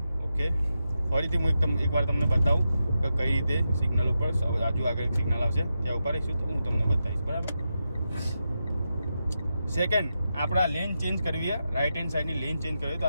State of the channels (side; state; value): both; inverted; correlation -0.88